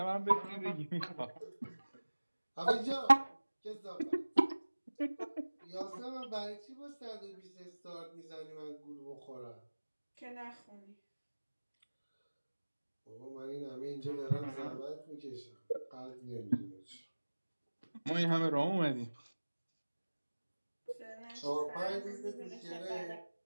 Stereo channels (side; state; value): both; inverted; correlation -1.00